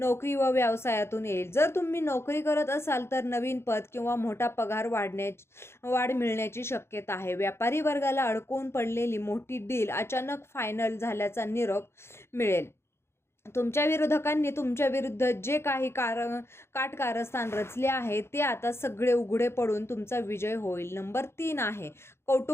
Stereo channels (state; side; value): late; right; 0.12 ms